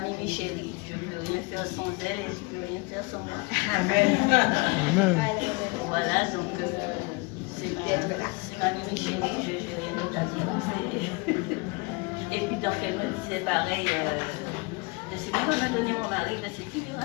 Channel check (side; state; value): right; quieter; 27.3 dB